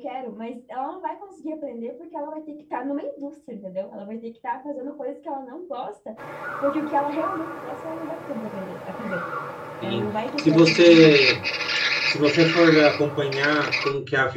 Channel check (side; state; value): both; identical; correlation 1.00